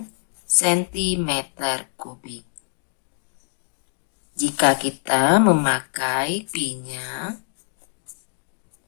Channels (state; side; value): silent; right; digital silence